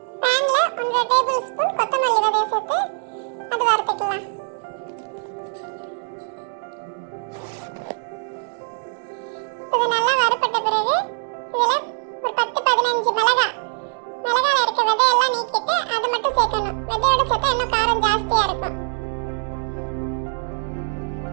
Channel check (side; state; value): left; silent; 64 dB below the other